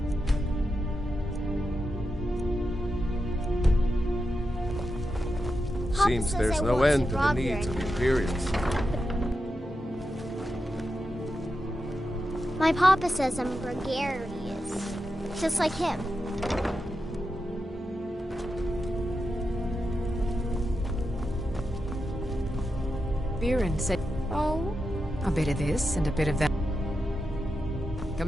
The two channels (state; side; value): normal; both; correlation 0.88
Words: Seems there's no end to the needs of the Imperials. My papa says I'm gregarious, just like him. Viren said, oh, a bit of this and a bit of that.